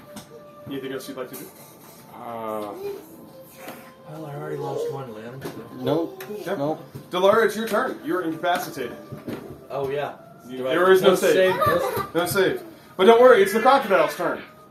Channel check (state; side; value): identical; both; correlation 1.00